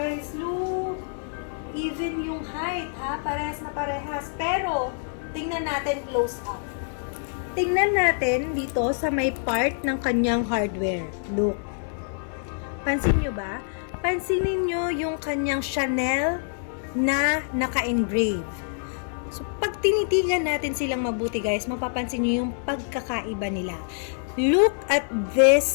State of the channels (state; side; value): silent; right; 61 dB below the other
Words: Look! Even yung height, ha? Parehas na parehas. Pero, tingnan natin close up. Tingnan natin dito sa may part ng kanyang hardware. Look. Pansin nyo ba? Pansinin nyo yung kanyang Chanel na naka-engrave. So, pag tinitigan natin silang mabuti guys, mapapansin nyo yung pagkakaiba nila. Look at